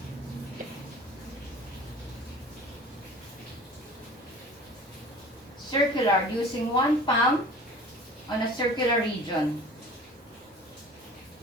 Circular, using one palm on a circular region.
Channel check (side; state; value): both; normal; correlation 0.43